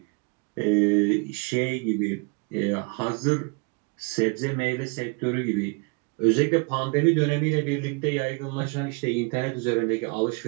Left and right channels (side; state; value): left; quieter; 32.3 dB